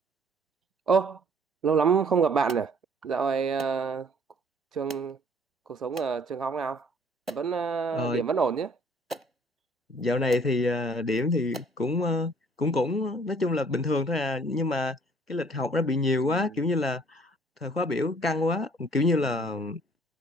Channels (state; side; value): normal; both; correlation 0.58